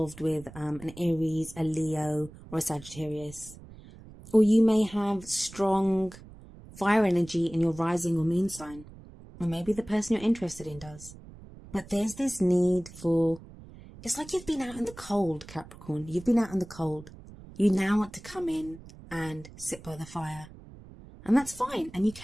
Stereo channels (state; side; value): noise; right; rumble, 18 dB below the sound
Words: with an Aries, a Leo, or a Sagittarius. Or you may have strong fire energy in your rising or moon sign. Or maybe the person you're interested in does. But there's this need for... It's like you've been out in the cold, Capricorn. You've been out in the cold. You now want to come in and sit by the fire. And that's fine, and you